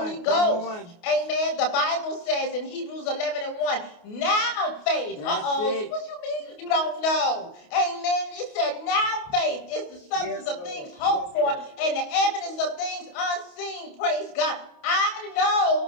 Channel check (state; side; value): late; right; 28 ms